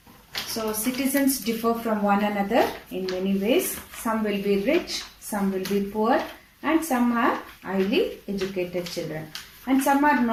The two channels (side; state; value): both; identical; correlation 1.00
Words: So citizens differ from one another in many ways. Some will be rich, some will be poor, and some are highly educated children. And some are